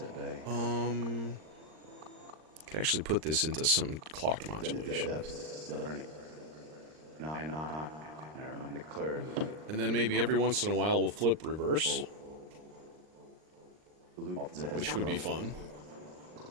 bay. Could actually put this into some clock modulation. Depths of the journey. I and I find the clarity. And then maybe every once in a while we'll flip reverse, which would be fun.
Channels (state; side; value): late; left; 39 ms